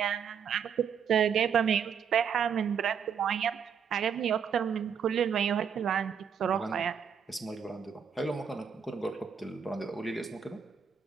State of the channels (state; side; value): quieter; left; 7.2 dB